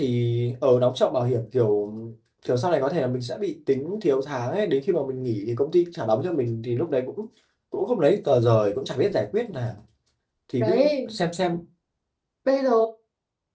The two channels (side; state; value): both; identical; correlation 1.00